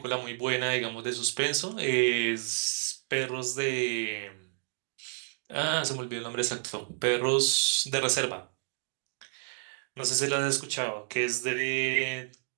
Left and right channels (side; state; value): left; silent; digital silence